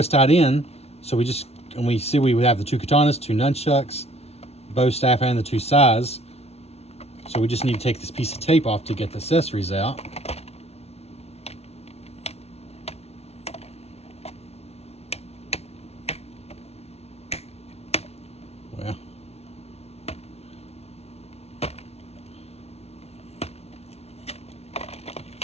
tied in. So we just, and we see we have the 2 katanas, 2 nunchucks, bow staff, and the 2 sais. So we just need to take this piece of tape off to get the accessories out. Well.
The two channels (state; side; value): late; right; 0.31 ms